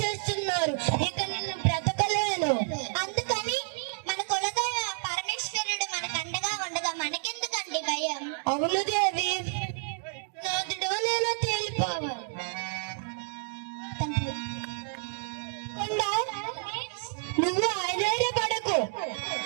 ఇక నిన్ను బ్రతకలేను. అందుకని మన కులదైవ పరమేశ్వరుడు మనకు అండగా ఉండగా మనకెందుకండి భయం? అవును దేవి, నాదుడో నేను తేలిపోవాలి. నువ్వు ఆశ్చర్యపడకు.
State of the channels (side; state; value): left; silent; 58 dB below the other